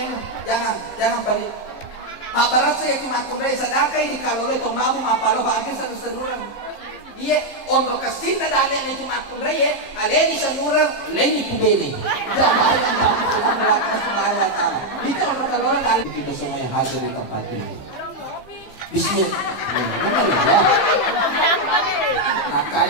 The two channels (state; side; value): late; right; 15 ms